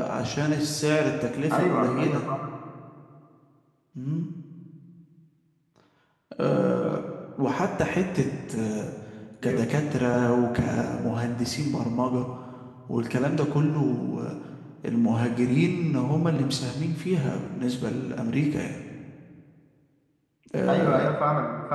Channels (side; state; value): both; identical; correlation 1.00